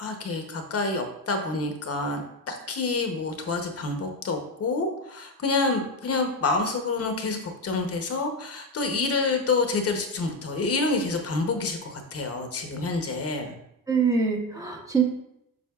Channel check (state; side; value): normal; both; correlation 0.14